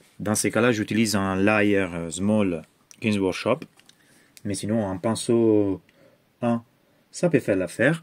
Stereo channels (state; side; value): identical; both; correlation 1.00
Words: Dans ces cas-là, j'utilise un Layer Small Games Workshop. Mais sinon, un pinceau 1, ça peut faire